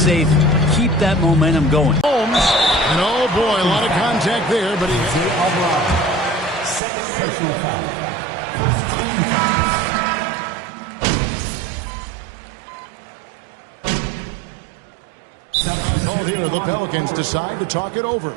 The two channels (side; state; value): left; drops out; at 6.8 s